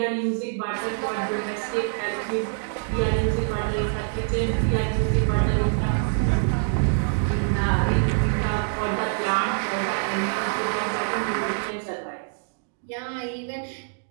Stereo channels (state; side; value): silent; left; digital silence